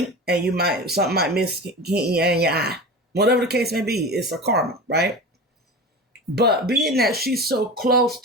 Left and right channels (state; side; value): normal; both; correlation 0.30